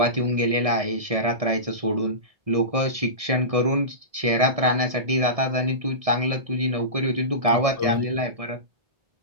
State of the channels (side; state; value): left; late; 1.6 ms